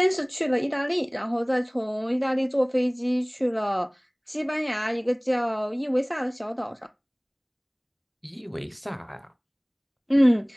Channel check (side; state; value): both; identical; correlation 1.00